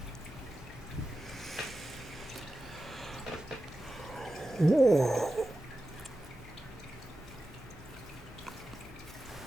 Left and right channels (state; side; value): noise; left; hum, 19 dB below the sound